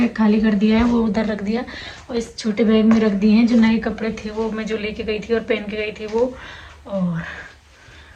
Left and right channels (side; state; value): both; identical; correlation 1.00